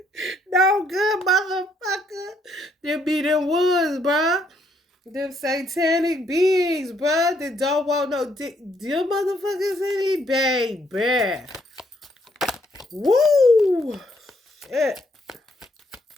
No good, motherfucker. Them be them woods, bruh. Them satanic beings, bruh, that don't want no dick. Them motherfuckers any baby. Woo! Shit.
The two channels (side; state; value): both; normal; correlation 0.71